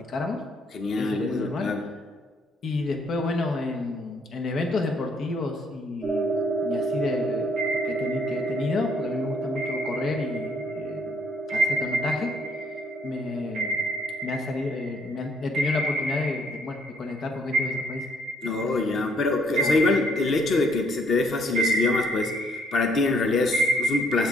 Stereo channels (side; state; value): both; normal; correlation 0.67